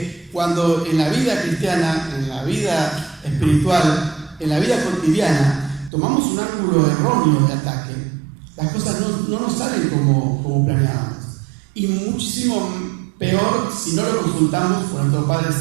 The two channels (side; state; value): left; drops out; at 5.9 s